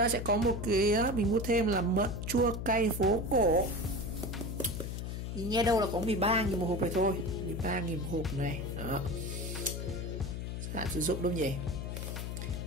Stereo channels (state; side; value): noise; left; hum, 5 dB below the sound